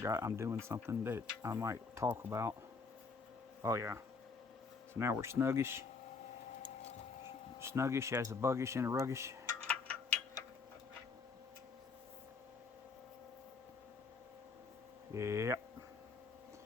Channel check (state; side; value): quieter; right; 4.7 dB